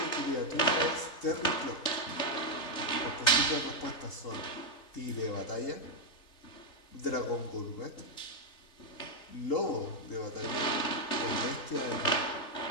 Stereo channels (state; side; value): late; right; 3.4 ms